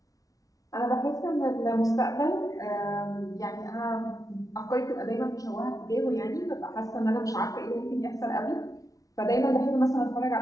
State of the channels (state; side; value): late; right; 0.17 ms